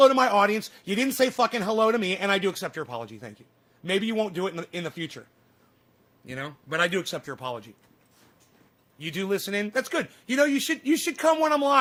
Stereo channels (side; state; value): both; identical; correlation 1.00